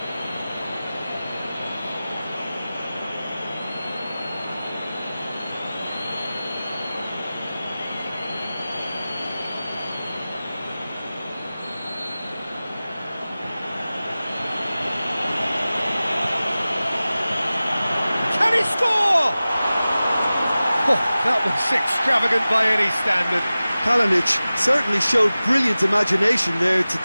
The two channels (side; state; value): both; inverted; correlation -0.97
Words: Can he score? Oh, that was extravagant by any standard. Kalinic certainly showed brilliant imagination there to